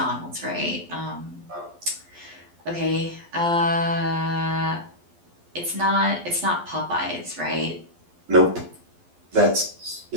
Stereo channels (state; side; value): late; left; 12 ms